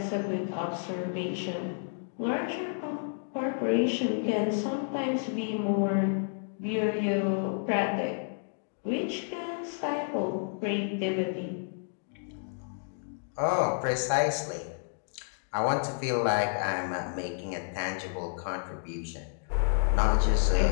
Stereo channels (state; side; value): silent; right; digital silence